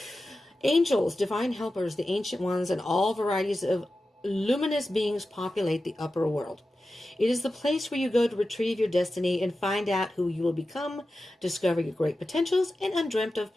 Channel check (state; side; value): normal; both; correlation 0.93